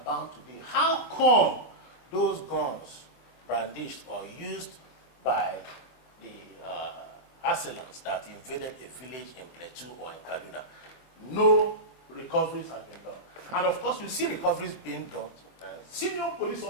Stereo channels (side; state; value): right; late; 25 ms